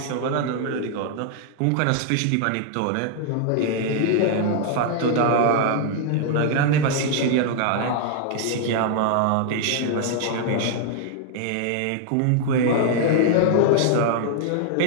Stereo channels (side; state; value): both; different; correlation -0.01